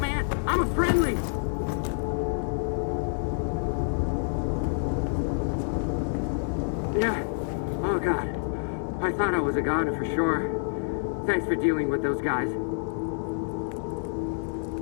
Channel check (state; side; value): silent; right; digital silence